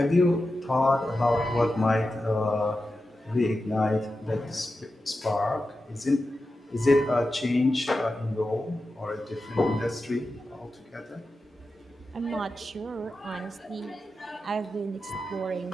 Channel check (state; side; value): normal; both; correlation 0.91